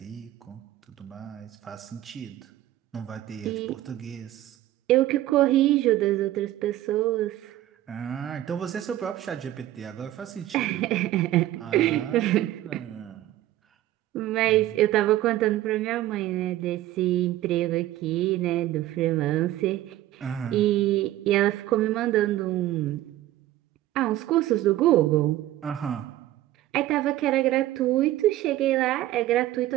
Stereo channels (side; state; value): left; quieter; 14.5 dB